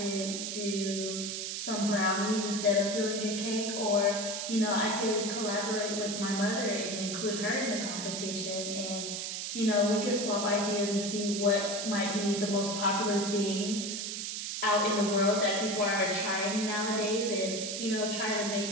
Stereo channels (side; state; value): right; noise; hiss, 4 dB below the sound